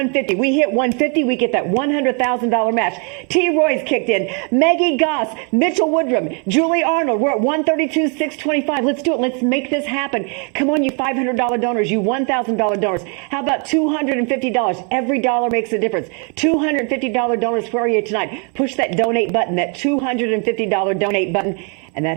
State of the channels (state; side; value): quieter; left; 36.9 dB